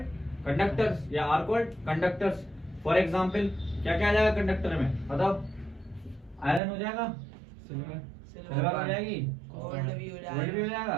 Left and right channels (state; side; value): drops out; left; at 6.6 s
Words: conductors या are called conductors. For example, क्या क्या आ जाएगा कंडक्टर में? बताओ। आयरन हो जाएगा, सिल्वर हो जाएगी, गोल्ड भी हो गोल्ड भी हो